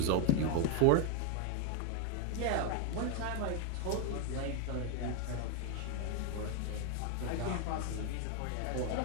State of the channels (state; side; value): different; both; correlation 0.01